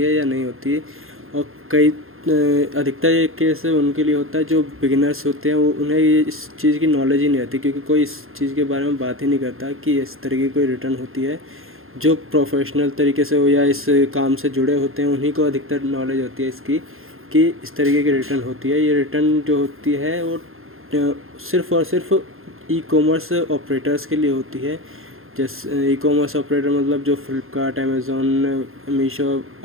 है या नहीं होती है। और कई अधिकतर ये केस उनके लिए होता है जो बिगिनर्स होते हैं, वो उन्हें इस चीज़ की नॉलेज ही नहीं रहती, क्योंकि कोई इस चीज़ के बारे में बात ही नहीं करता कि इस तरीके की कोई रिटर्न होती है। जो प्रोफेशनल तरीके से हो या इस काम से जुड़े होते हैं, उन्हीं को अधिकतर नॉलेज होती है इसकी कि इस तरीके की रिटर्न होती है। ये रिटर्न जो होती है वो सिर्फ़ और सिर्फ ई कॉमर्स ऑपरेटर्स के लिए होती है। जैसे ई कॉमर्स ऑपरेटर मतलब जो फ्लिपकार्ट, अमेज़ोन, मीशो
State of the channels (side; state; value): left; late; 0.61 ms